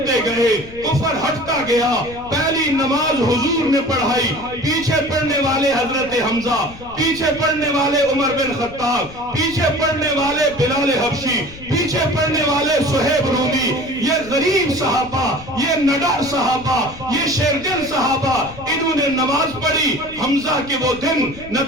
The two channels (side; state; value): left; noise; rumble, 17 dB below the sound